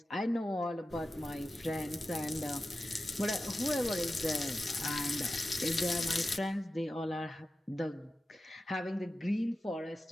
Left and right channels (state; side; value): normal; both; correlation 0.93